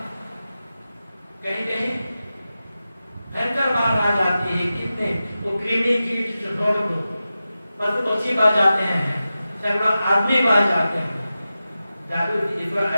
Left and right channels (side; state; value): both; inverted; correlation -0.93